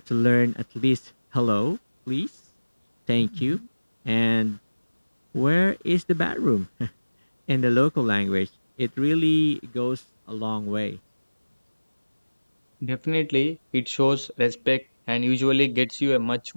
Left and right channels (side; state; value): both; inverted; correlation -1.00